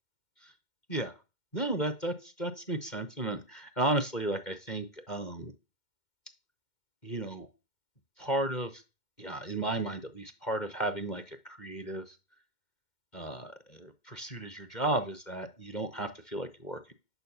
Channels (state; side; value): late; right; 2.1 ms